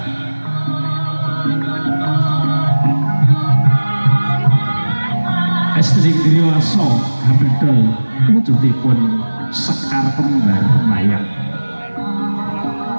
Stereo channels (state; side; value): inverted; both; correlation -1.00